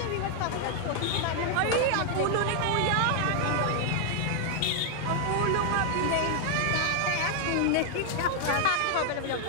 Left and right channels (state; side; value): different; both; correlation 0.00